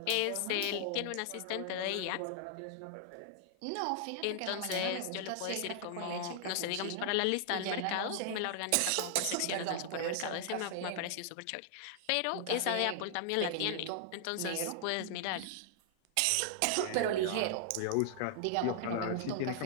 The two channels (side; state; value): both; different; correlation -0.01